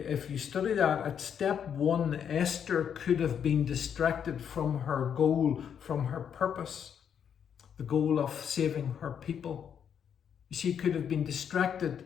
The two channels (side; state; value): right; quieter; 8.1 dB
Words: you study that, at step 1, Esther could have been distracted from her goal, from her purpose, the goal of saving her people. She could have been